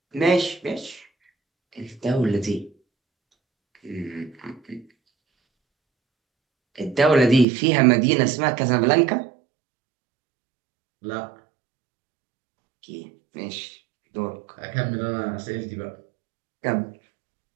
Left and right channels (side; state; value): left; drops out; at 7.5 s